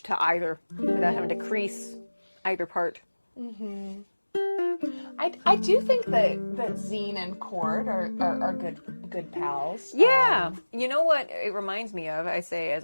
to either, without having to crease either part. I do think that Zine and Chord are good pals. Yeah. You know what it reminds me of, I say as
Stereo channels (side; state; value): both; inverted; correlation -1.00